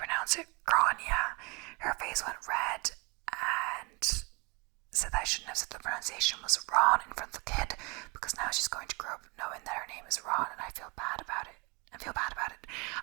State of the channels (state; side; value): quieter; left; 29.2 dB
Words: it Grania. Her face went red and said that I shouldn't have said the pronunciation was Ron in front of the kid, because now she's going to grow up knowing that her name is Ron, and I feel bad about it.